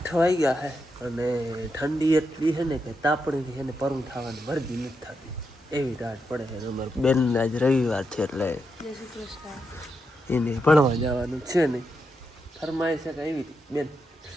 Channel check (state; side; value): normal; both; correlation 0.84